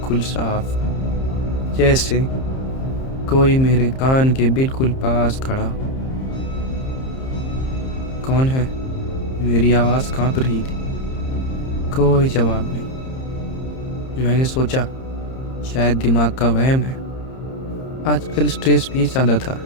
साफ, जैसे कोई मेरे कान के बिल्कुल पास खड़ा हो। कौन है? मेरी आवाज़ कांप रही थी। कोई जवाब नहीं। मैंने सोचा शायद दिमाग का वहम है। आजकल स्ट्रेस भी ज़्यादा था।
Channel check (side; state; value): right; late; 30 ms